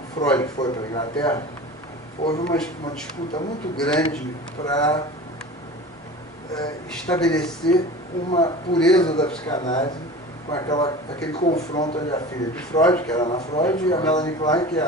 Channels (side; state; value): both; normal; correlation 0.36